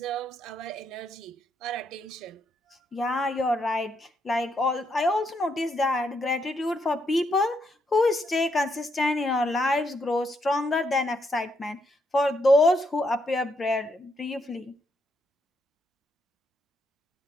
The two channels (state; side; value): normal; both; correlation 0.77